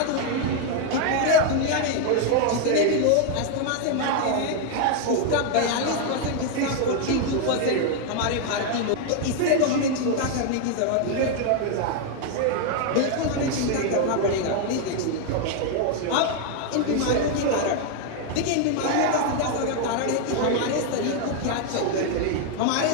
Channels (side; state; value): both; different; correlation 0.01